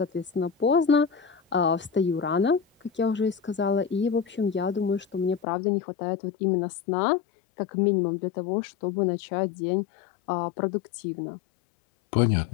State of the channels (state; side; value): drops out; right; at 5.4 s